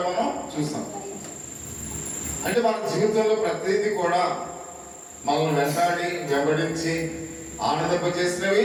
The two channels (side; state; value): both; identical; correlation 1.00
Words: మనం చూసాం. అంటే మన జీవితంలో ప్రతిదీ కూడా మనల్ని వెంబడించి